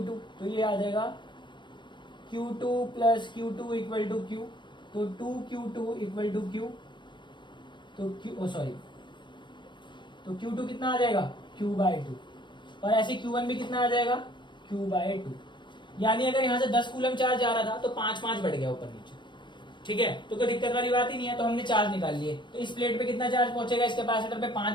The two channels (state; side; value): late; right; 0.22 ms